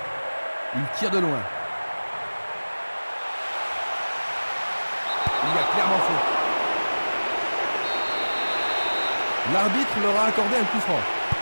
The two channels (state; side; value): inverted; both; correlation -1.00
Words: Il tire de loin. Il a clairement fait. L'arbitre leur a accordé un coup franc.